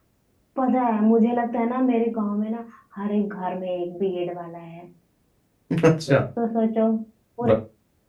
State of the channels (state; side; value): identical; both; correlation 1.00